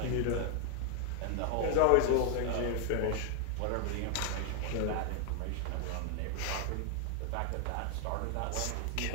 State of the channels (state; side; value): different; both; correlation 0.00